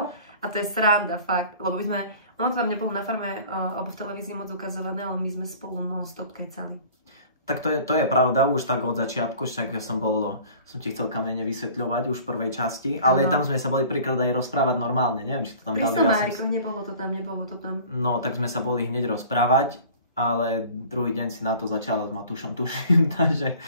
A to je sranda, fakt. Lebo my sme... Ono to tam nebolo na farme alebo v televízii moc ukazované, ale my sme spolu non-stop kecali. Tak to je pravda, už tak od začiatku, však som ti chcel kamene vysvetľovať už v prvej časti, ale tam sme sa boli príklad aj rozprávať normálne, neviem, či to tam dali. Nebolo to tam. No, tak sme sa boli hneď rozprávať, ale druhý deň si na to začala s Matúšom, tuším, takže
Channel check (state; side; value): inverted; both; correlation -0.46